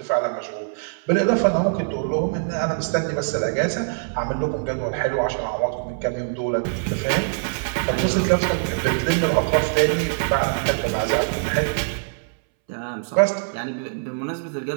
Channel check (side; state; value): left; silent; 63 dB below the other